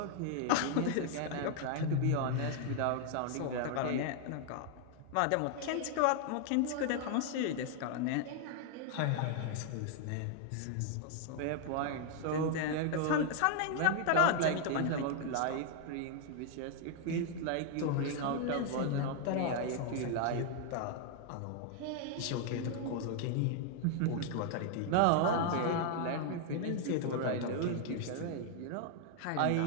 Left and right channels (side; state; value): both; different; correlation 0.00